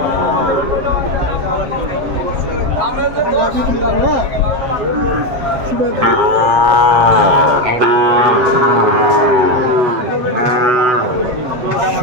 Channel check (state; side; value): late; left; 7.8 ms